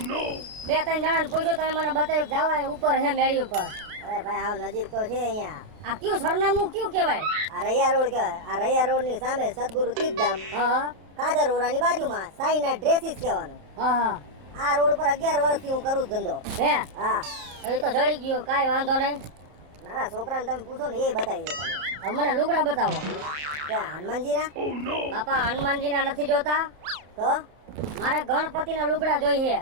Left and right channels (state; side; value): late; left; 33 ms